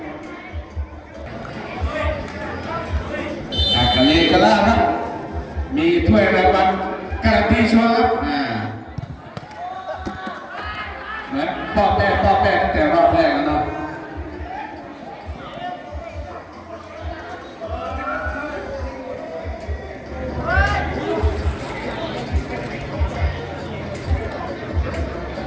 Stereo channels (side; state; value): both; identical; correlation 1.00